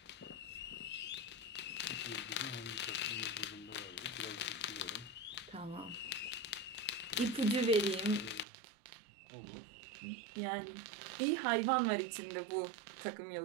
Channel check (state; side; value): drops out; left; at 8.5 s